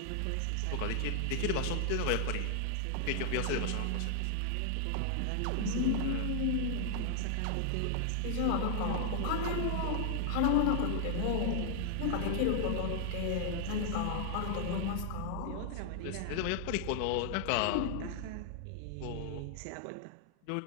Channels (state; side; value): different; both; correlation 0.00